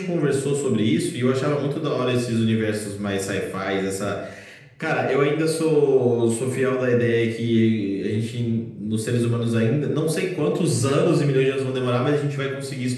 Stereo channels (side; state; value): both; identical; correlation 1.00